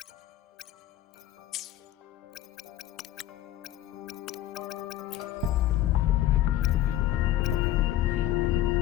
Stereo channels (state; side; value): quieter; right; 12.7 dB